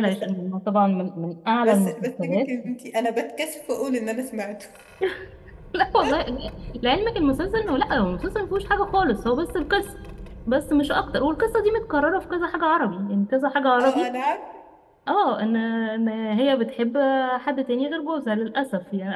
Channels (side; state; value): both; identical; correlation 1.00